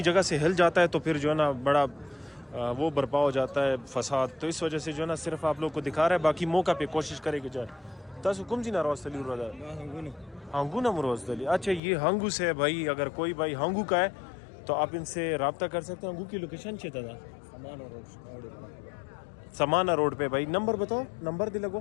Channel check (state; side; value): drops out; right; at 11.8 s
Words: جگہ سے ہل جاتا ہے تو پھر جو ہے نا بڑا وہ برپا ہو جاتا ہے فساد تو اس وجہ سے جو ہے نا صرف آپ لوگ کو دکھا رہا ہے باقی موقع پہ کوشش کرے کہ جائے تاسو کم جی ناراض تلی رہا ہانگو نا مروز تلی. اچھا یہ ہانگو سے ہے بھائی اگر کوئی بھائی ہانگو کا ہے تو آپ ان سے رابطہ کر سکتے ہیں. ہانگو کی لوکیشن چاہتا تھا سمانا روڈ پہ بھائی. نمبر بتاؤ نمبر دے لگو